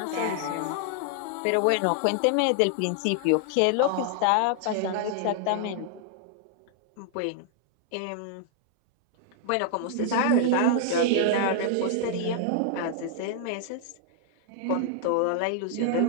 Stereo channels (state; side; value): different; both; correlation -0.01